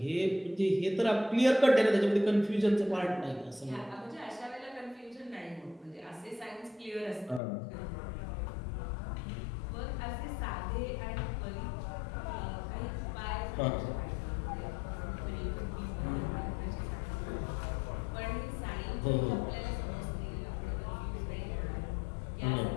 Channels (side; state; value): right; drops out; at 7.4 s